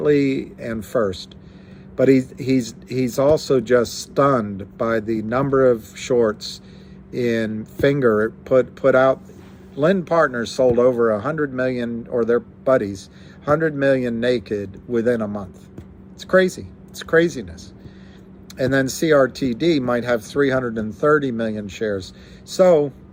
and first. But he's also just stunned by the number of shorts in Finger. Put out. Lynn Partners sold over 100 million, or their buddies, 100 million naked within a month. It's crazy. It's craziness. And then CRTD might have 330 million shares. So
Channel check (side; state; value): both; identical; correlation 1.00